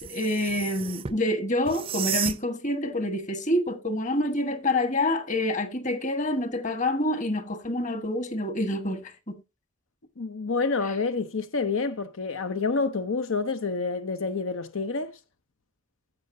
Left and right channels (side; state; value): both; normal; correlation 0.20